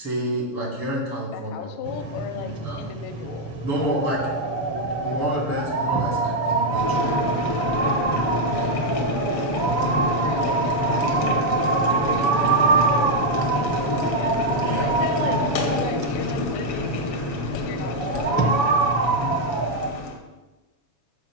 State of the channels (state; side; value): late; right; 7.0 ms